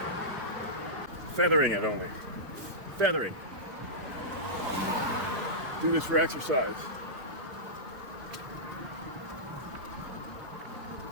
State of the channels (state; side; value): late; left; 3.7 ms